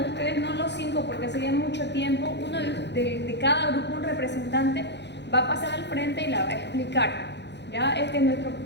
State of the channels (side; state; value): right; late; 0.50 ms